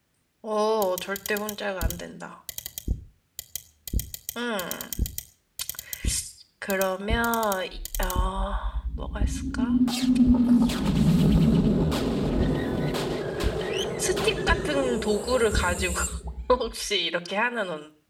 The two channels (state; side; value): identical; both; correlation 1.00